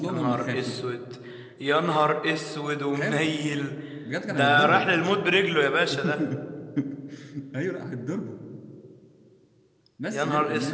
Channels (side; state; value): both; identical; correlation 1.00